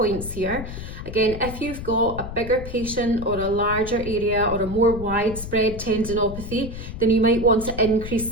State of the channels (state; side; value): noise; left; rumble, 9 dB below the sound